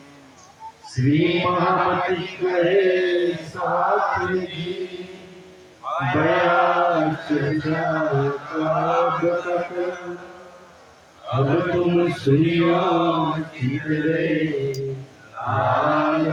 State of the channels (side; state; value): both; identical; correlation 1.00